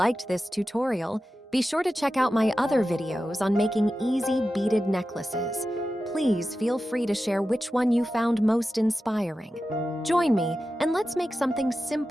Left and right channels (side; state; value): both; normal; correlation 0.93